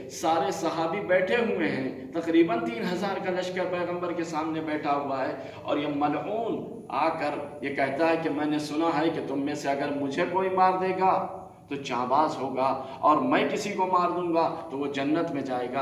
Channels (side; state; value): both; identical; correlation 1.00